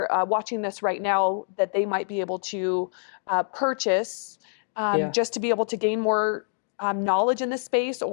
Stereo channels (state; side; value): silent; right; digital silence